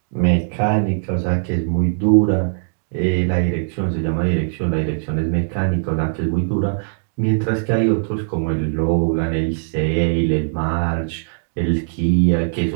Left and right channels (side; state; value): left; silent; digital silence